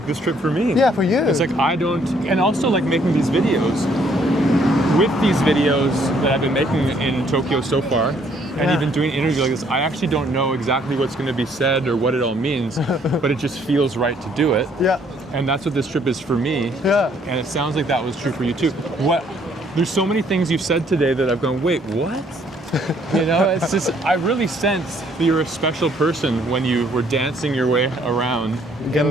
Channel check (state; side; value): normal; both; correlation 0.65